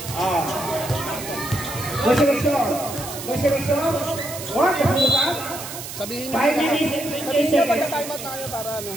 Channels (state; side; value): noise; right; hiss, 10 dB below the sound